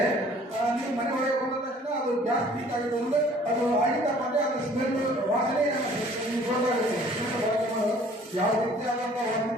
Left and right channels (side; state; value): both; normal; correlation 0.54